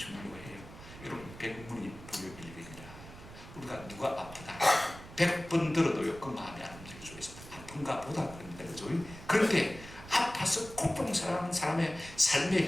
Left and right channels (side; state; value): right; noise; rumble, 16 dB below the sound